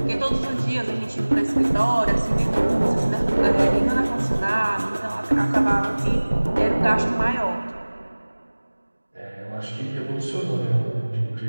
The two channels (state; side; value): inverted; both; correlation -1.00